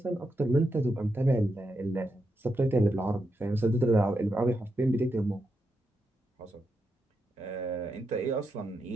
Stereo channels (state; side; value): normal; both; correlation 0.85